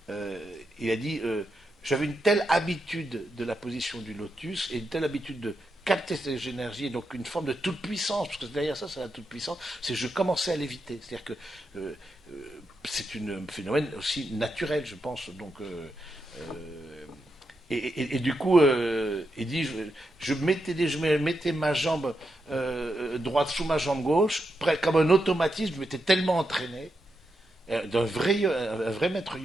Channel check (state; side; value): normal; both; correlation 0.85